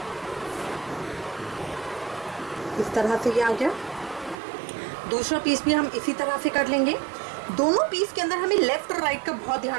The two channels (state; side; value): drops out; left; at 4.4 s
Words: इस तरह से ये आ गया। दूसरा पीस भी हम इसी तरह से कर लेंगे। दोनों पीस के अंदर हमें लेफ्ट और राइट का बहुत